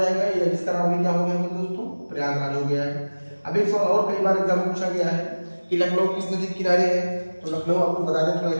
ये जिसका नाम भी क्या हो गया मेरे दोस्तों? प्रयागराज हो गया है। अब एक सवाल और कई बार एग्जाम में पूछा गया है कि लखनऊ किस नदी के किनारे है? तो लखनऊ आपको बता दें, थोड़ा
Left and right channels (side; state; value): both; inverted; correlation -1.00